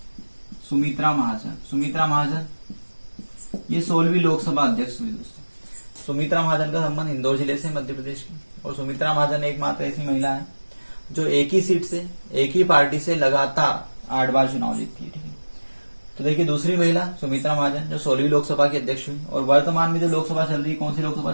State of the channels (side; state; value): both; inverted; correlation -1.00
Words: सुमित्रा महाजन ये 16वीं लोकसभा अध्यक्ष हुई दोस्तों। सुमित्रा महाजन का संबंध इंदौर जिले से, मध्य प्रदेश की। और सुमित्रा महाजन एकमात्र ऐसी महिला है जो एक ही सीट से, एक ही पार्टी से लगातार 8 बार चुनाव जीतती है, ठीक है। तो देखिए, दूसरी महिला सुमित्रा महाजन जो 16वीं लोकसभा की अध्यक्ष हुई। और वर्तमान में जो लोकसभा चल रही, कौन सी लोकसभा